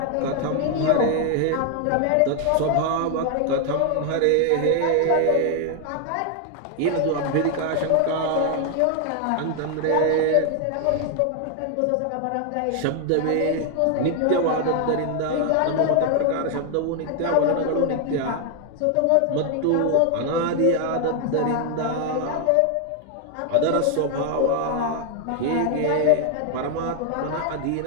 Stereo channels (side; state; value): both; different; correlation 0.00